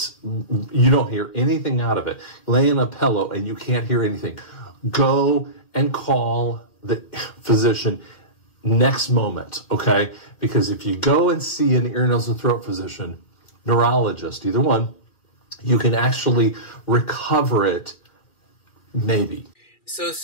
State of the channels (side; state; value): right; late; 2.6 ms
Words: you don't hear anything out of it, lay in a pillow and you can't hear anything, go and call the physician next moment, okay? Because if you go and see an ear, nose, and throat physician, neurologist, either one, you can actually recover it, maybe. So